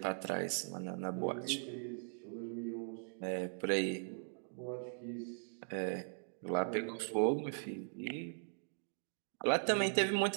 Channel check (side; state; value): left; silent; digital silence